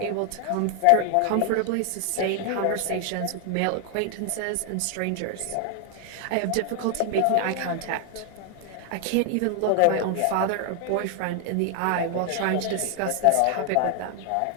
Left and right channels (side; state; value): both; different; correlation 0.00